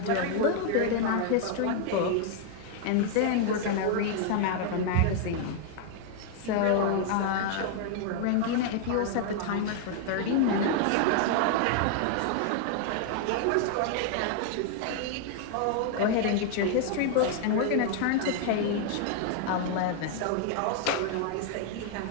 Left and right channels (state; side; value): different; both; correlation 0.00